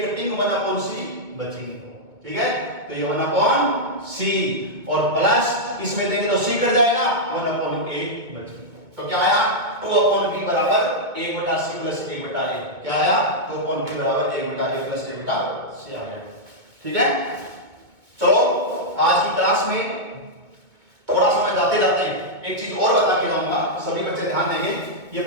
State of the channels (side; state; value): left; late; 2.2 ms